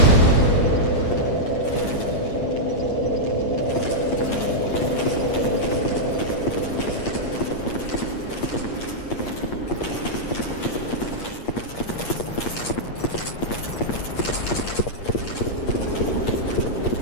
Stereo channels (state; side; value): late; right; 8.5 ms